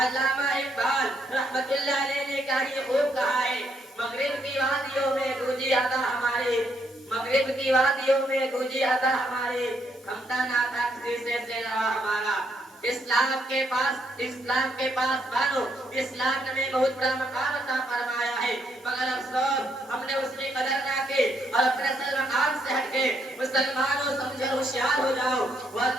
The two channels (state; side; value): normal; both; correlation 0.74